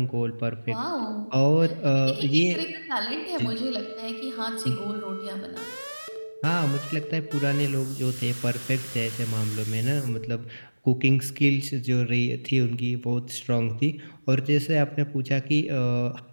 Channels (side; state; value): both; inverted; correlation -1.00